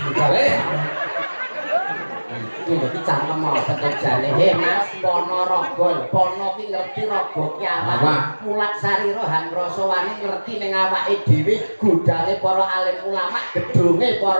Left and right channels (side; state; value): both; inverted; correlation -1.00